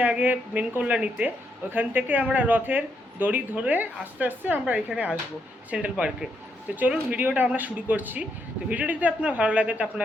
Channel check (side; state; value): both; normal; correlation 0.77